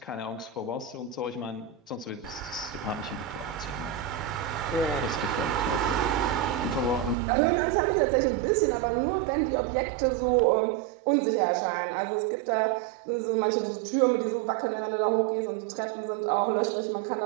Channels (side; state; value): left; drops out; at 7.2 s